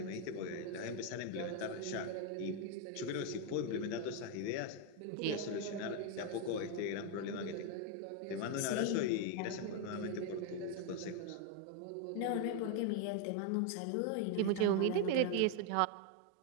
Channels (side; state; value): both; different; correlation 0.01